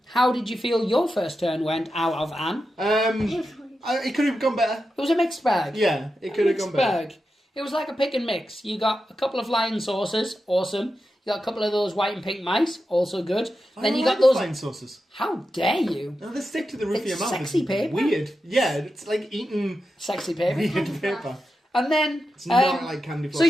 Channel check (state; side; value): normal; both; correlation 0.90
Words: did you feel your first turn went out of Anne? It could have gone better. It was a mixed bag. Yeah, it could have gone better. Bag. It was like a pick and mix. You got a couple of flying saucers, awesome. You got a couple of those white and pink mice, also good. Then you got those. flying sauces. How dare you? No, they stick to the roof of your It's mouth. sexy It's paper. Weird. Yeah, it's like eating Sexy paper. weird paper. And then. It's not like candy floss. So